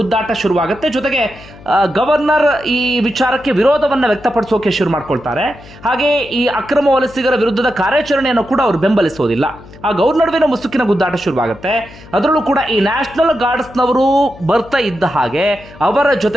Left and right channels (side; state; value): left; noise; hum, 20 dB below the sound